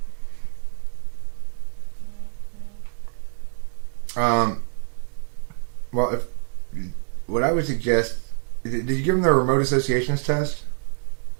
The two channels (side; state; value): left; silent; digital silence